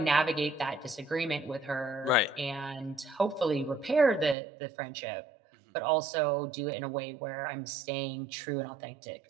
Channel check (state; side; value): drops out; left; at 4.4 s